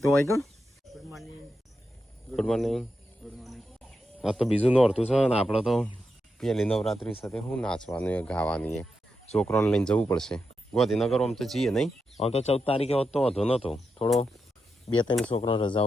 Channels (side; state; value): both; normal; correlation 0.86